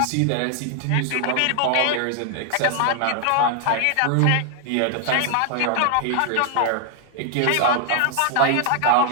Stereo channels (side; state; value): both; different; correlation 0.00